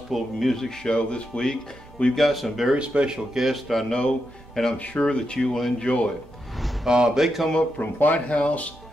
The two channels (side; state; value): both; normal; correlation 0.85